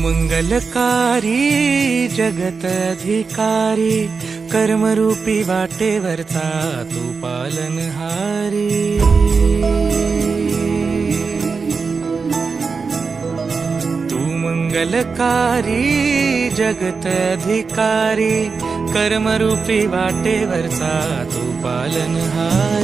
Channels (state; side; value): quieter; left; 4.9 dB